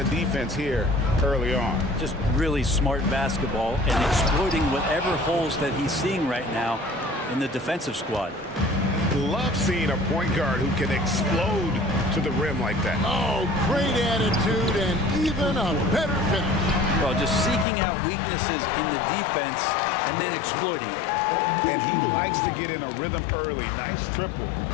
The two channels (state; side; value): drops out; right; at 17.7 s